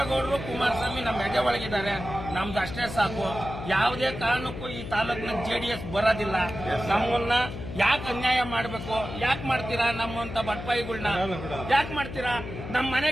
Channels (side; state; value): left; noise; hum, 9 dB below the sound